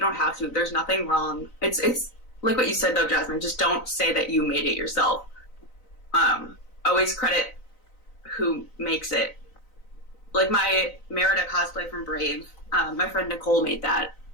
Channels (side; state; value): right; late; 3.9 ms